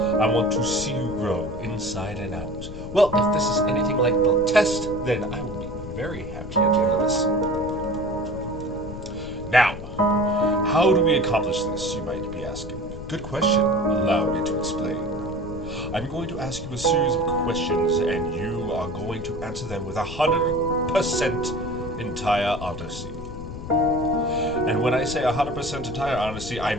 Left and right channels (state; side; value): noise; left; rumble, 10 dB below the sound